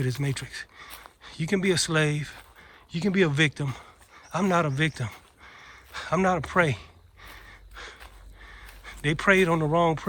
this matrix. You can be a slave. You can be a victim. I'm not a victim. I'm not a prey. They preyed on the wrong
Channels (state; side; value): identical; both; correlation 1.00